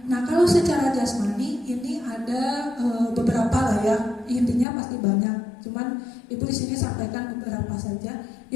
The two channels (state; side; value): drops out; right; at 4.7 s